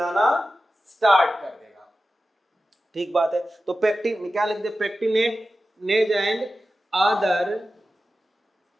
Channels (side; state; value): both; normal; correlation 0.93